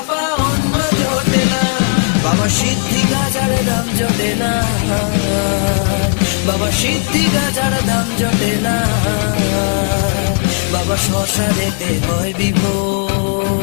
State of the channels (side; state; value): right; quieter; 38.3 dB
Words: অন্য জোটে না, বাবা সিদ্ধি গাজার দাম জোটে না, বাবা সিদ্ধি গাজার দাম জোটে না, বাবা শ্মশানেতে হয়